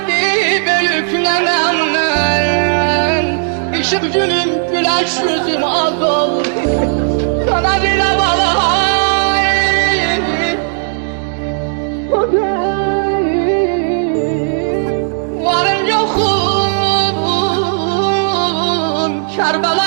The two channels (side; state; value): left; silent; digital silence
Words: büyük nenem nenem. Işık günüm güneş yüzüm az oldu. Sana bir havalar. Varım yokum,